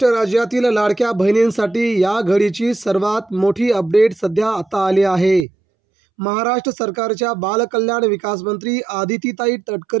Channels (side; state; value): left; drops out; at 5.5 s